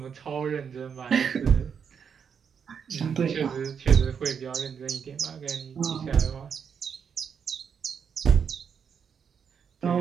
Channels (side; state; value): left; quieter; 7.0 dB